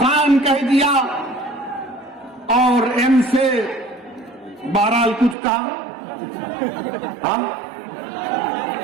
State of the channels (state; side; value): drops out; left; at 5.4 s